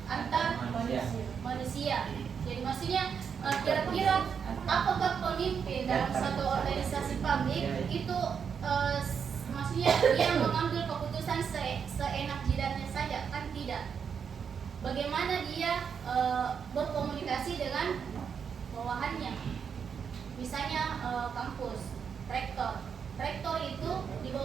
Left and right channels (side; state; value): left; quieter; 6.9 dB